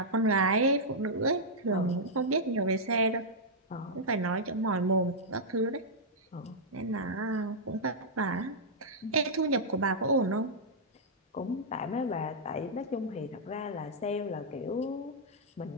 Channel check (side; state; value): both; normal; correlation -0.08